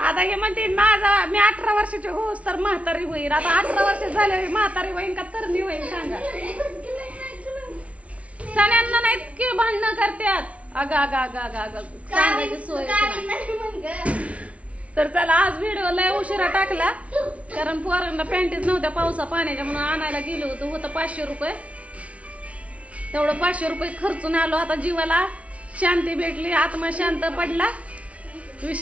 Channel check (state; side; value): late; left; 0.064 ms